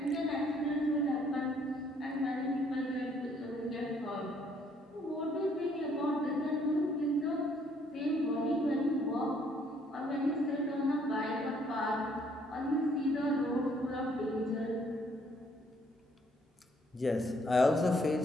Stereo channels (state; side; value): normal; both; correlation 0.66